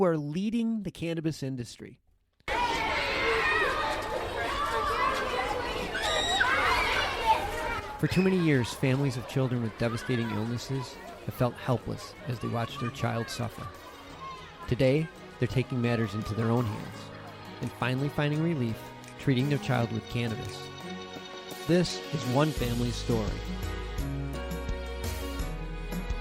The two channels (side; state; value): both; identical; correlation 1.00